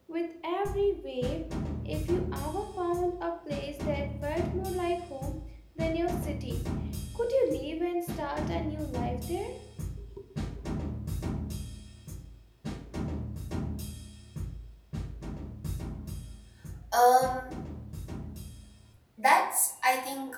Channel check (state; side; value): identical; both; correlation 1.00